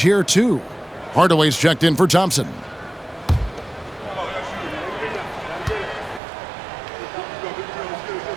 here, too. Hardaway's checked in for Thompson.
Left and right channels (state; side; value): drops out; left; at 6.2 s